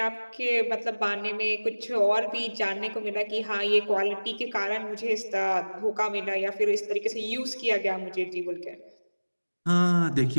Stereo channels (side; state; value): both; inverted; correlation -1.00